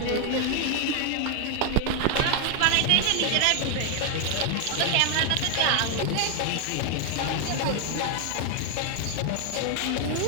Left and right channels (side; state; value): both; different; correlation 0.00